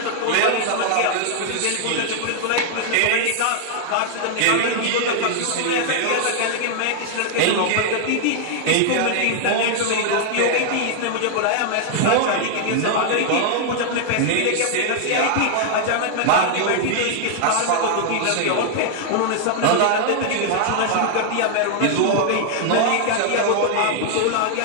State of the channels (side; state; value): both; different; correlation 0.00